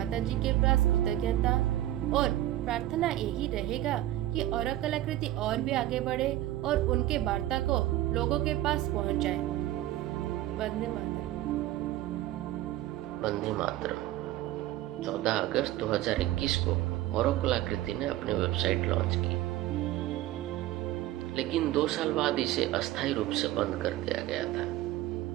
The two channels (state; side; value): quieter; left; 14.7 dB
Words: जी के पास कृतज्ञता और प्रार्थना यही रहेगा कि अरब कलाकृति और भी आगे बढ़े और उनके वार्ता को लोगों के पास पहुंचाए। वंदे मातरम। वंदे मातरम। 14 अगस्त 2021 को अरब कलाकृति ने अपनी वेबसाइट लॉन्च की, लेकिन 2 साल बाद इसे अस्थायी रूप से बंद कर दिया गया था।